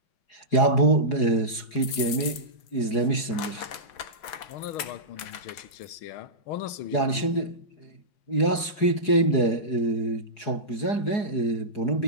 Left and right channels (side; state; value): right; late; 6.1 ms